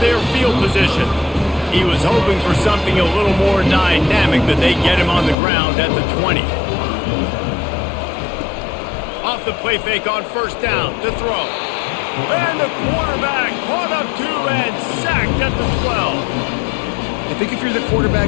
their field position. He was hoping for something a little more dynamic, but they get him on the ground at the 20. Off the play fake on first down to throw. And the quarterback caught up to and sacked at the 12. I think if you're the quarterback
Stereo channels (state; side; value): drops out; right; at 5.4 s